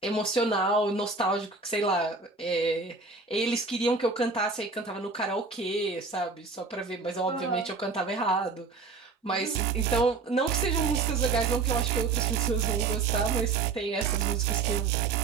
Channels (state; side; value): quieter; left; 4.2 dB